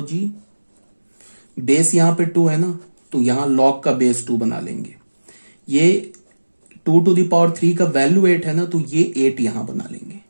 बेस यहां पे 2 है ना, तो यहां लॉग का बेस 2 बना लेंगे। ये 2 to the power 3 का वैल्यू 8 है ना, तो ये 8 यहां बना लेंगे।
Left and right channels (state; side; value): inverted; both; correlation -1.00